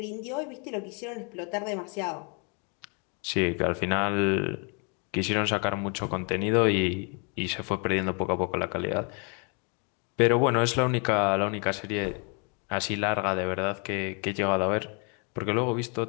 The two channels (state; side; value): quieter; right; 35.8 dB